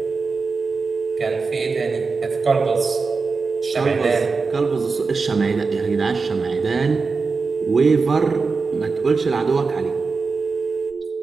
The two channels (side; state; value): left; quieter; 4.5 dB